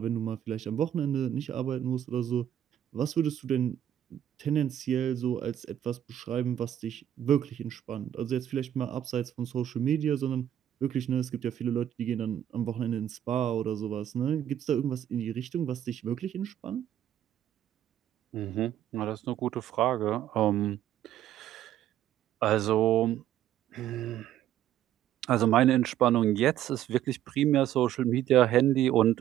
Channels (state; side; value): quieter; left; 11.2 dB